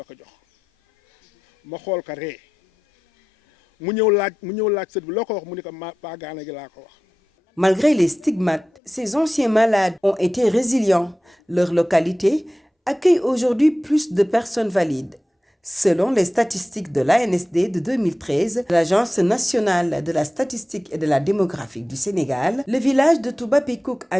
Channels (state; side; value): normal; both; correlation 0.93